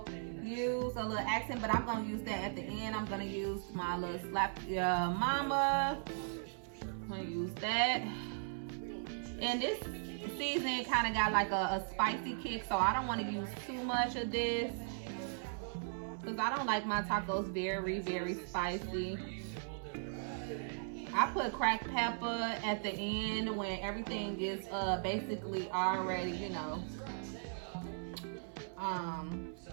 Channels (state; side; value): silent; left; 52 dB below the other